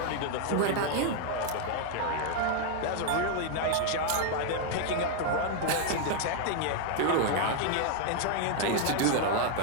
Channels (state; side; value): different; both; correlation 0.00